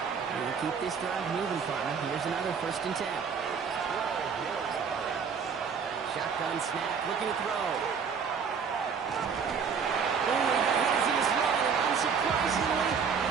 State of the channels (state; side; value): quieter; left; 6.3 dB